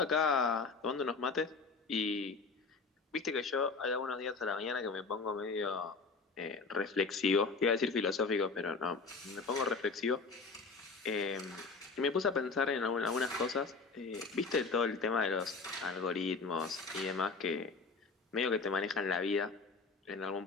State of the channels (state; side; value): quieter; right; 4.4 dB